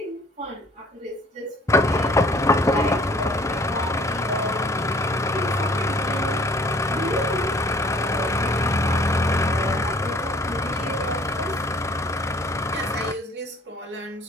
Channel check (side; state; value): both; normal; correlation 0.55